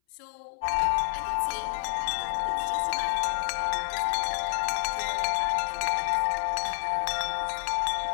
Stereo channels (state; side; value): silent; right; 59 dB below the other